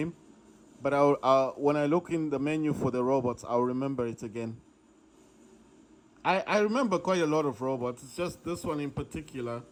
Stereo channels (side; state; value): both; identical; correlation 1.00